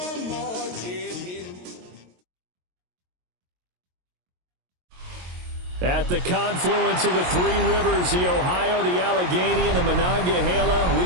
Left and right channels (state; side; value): late; left; 22 ms